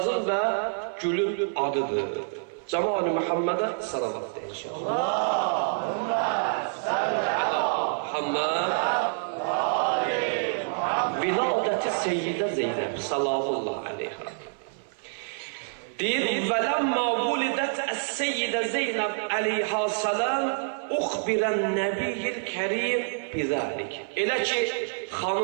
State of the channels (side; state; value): left; silent; 58 dB below the other